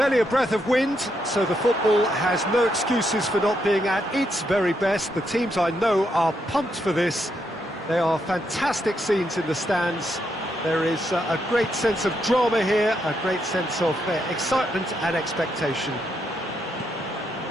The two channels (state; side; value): normal; both; correlation 0.79